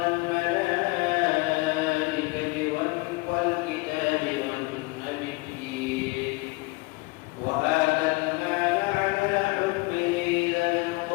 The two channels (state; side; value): quieter; right; 24.9 dB